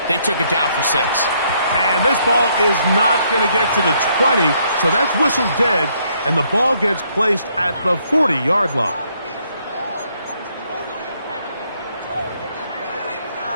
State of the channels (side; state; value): both; inverted; correlation -0.70